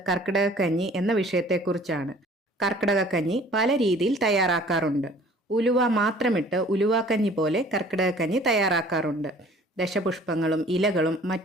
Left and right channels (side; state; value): both; normal; correlation 0.52